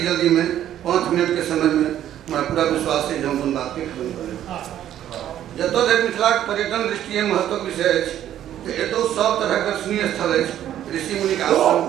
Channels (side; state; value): left; quieter; 11.4 dB